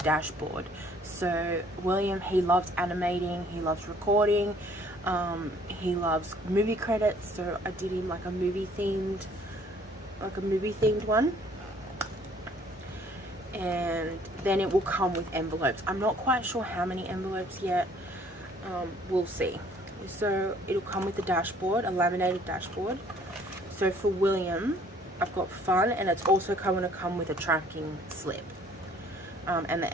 So William, he loves animating, he loves recording, he loves movie credits, so I did him like a movie themed one. And then it will come with envelopes. I'm not quite sure how many envelopes yet. We'll see. So it'll come with a dashboard, a laminated dashboard. So for William, I've got fun, and it's also going to come with a tracking slip. and the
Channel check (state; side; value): normal; both; correlation 0.58